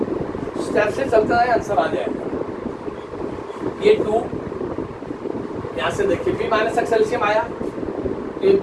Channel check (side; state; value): both; identical; correlation 1.00